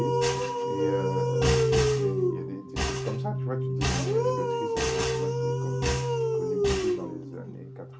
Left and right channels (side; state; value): both; identical; correlation 1.00